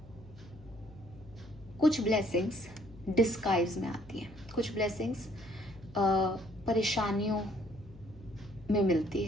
कुछ ब्लेसिंग्स डिस्गाइज में आती हैं, कुछ ब्लेसिंग्स परेशानियों में मिलती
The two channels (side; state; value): left; noise; hum, 20 dB below the sound